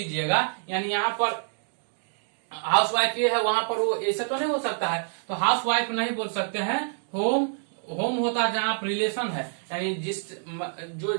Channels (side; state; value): left; silent; digital silence